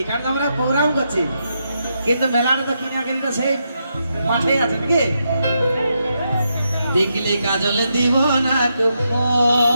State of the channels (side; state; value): both; inverted; correlation -0.82